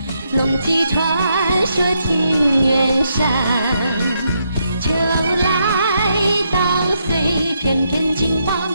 龙骑传说田园上。秋来稻穗片片金黄，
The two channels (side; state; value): both; inverted; correlation -0.79